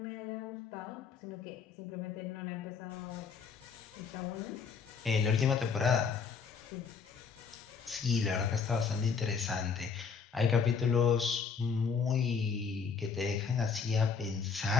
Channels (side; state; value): right; quieter; 5.7 dB